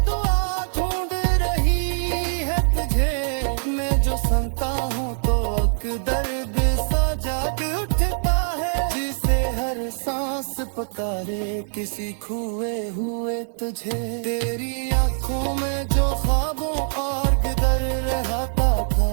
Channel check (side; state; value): left; silent; digital silence